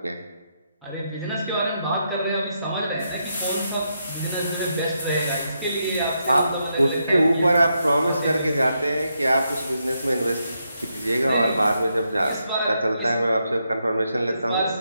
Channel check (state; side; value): inverted; both; correlation -0.81